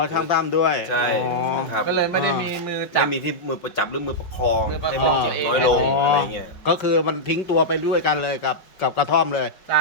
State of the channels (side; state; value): right; late; 5.6 ms